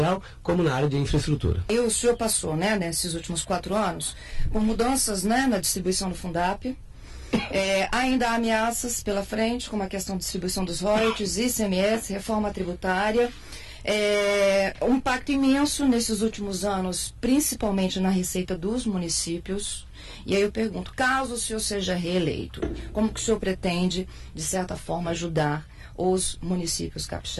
como na área de infraestrutura. E o senhor passou, né, nesses últimos 4 anos, por mudanças, né, na distribuição do Fundap. Ainda há ameaças pela frente, como a questão da distribuição dos royalties, ICMS, reforma tributária. Um impacto imenso nesses últimos anos, principalmente na receita dos municípios. E aí eu pergunto, caso o senhor seja reeleito, como que o senhor pretende, de certa forma, ajudar os municípios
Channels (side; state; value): both; identical; correlation 1.00